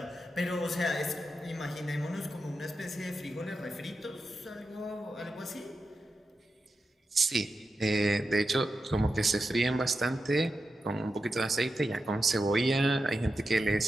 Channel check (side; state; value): both; normal; correlation 0.89